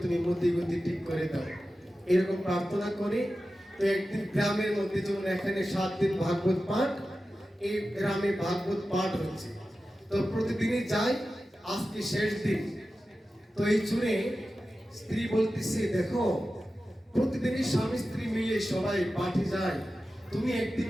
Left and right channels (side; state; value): both; normal; correlation 0.93